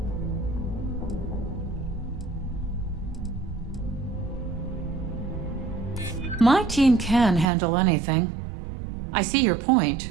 My team can handle anything. I see your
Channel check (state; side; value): drops out; left; at 7.5 s